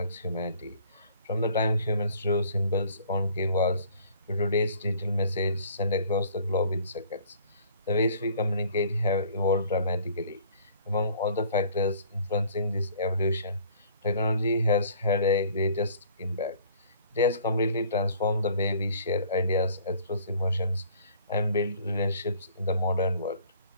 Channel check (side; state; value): both; inverted; correlation -0.54